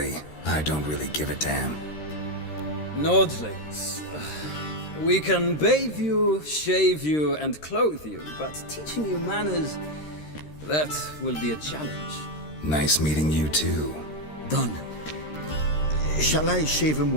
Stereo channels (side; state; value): right; late; 13 ms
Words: I don't really give a damn. Nordlings. We can bathe you, shave you, and clothe you, but teaching you manners, that will be a challenge. Nice meeting you too. Done. Shall I shave him